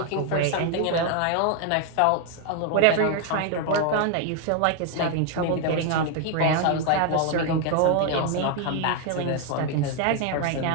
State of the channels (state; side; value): different; both; correlation 0.00